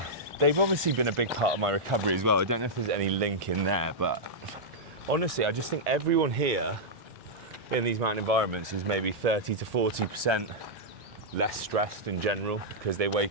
They've obviously been a big part of my recovery as well. I don't know if there's any link in there, but honestly, I just think everyone here in these mountain environments is maybe 30 to 40% less stressed in general, because they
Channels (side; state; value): both; normal; correlation -0.08